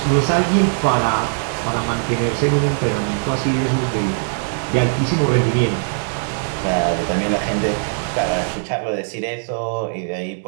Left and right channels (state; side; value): silent; left; digital silence